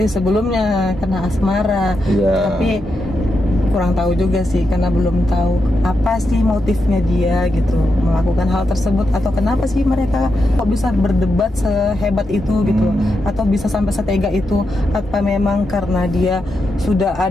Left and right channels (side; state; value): both; normal; correlation 0.85